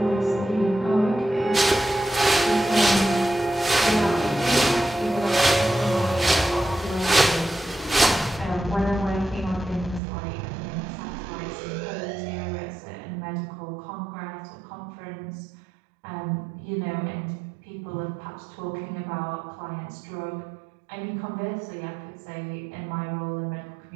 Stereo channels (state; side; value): drops out; left; at 10.0 s